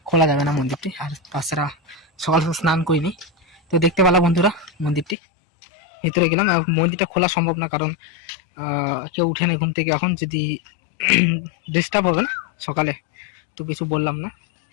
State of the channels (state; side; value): drops out; right; at 5.2 s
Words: খোলা যাবে না মন্দিরটি। আর তাছাড়া সকাল স্নান করিনি, তো দেখতে পেলাম বন্ধুরা মন্দিরটি। ভিতরে গেলাম, মন্দিরটা খোলা সম্ভব না, কারণ কেউ উঠে নাই ঘুম থেকে এখন, যদি ডিস্টার্ব হবে না সকালে, তো কিছু বললাম না।